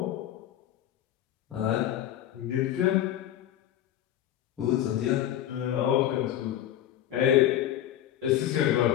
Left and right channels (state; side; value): quieter; right; 11.9 dB